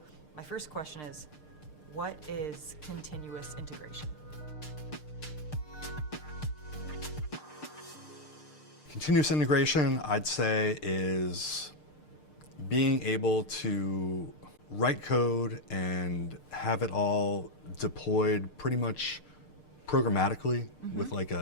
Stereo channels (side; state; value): right; late; 6.6 ms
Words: my first question is, what is continuous integration? Continuous integration, I'd say, is being able to write code and have it all deployed pretty much programmatically with like